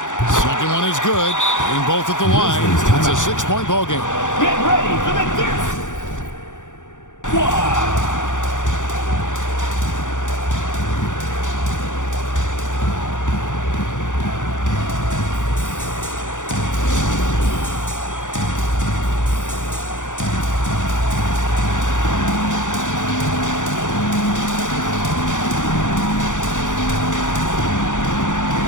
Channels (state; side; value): late; right; 0.86 ms